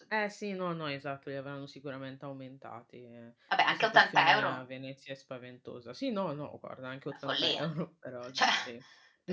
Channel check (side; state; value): both; identical; correlation 1.00